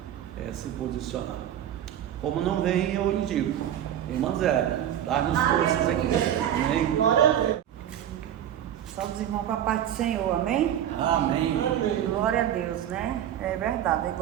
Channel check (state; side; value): quieter; left; 10.7 dB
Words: se posicionar. Como não vem, eu indico. Irmã Zélia, dá-nos forças aqui. Amém? Só dos irmãos com a paz do Senhor, amém? Amém. Glória a Deus, né? É verdade,